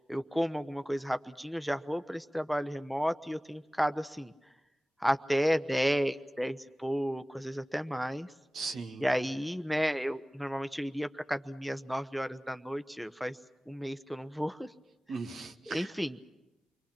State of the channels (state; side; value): normal; both; correlation 0.98